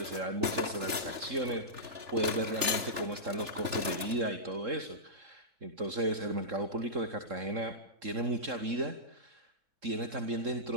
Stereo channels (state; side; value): late; left; 3.4 ms